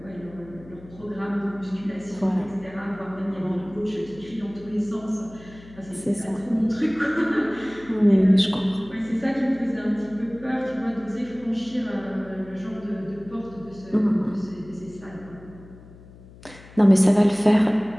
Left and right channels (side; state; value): left; noise; hum, 21 dB below the sound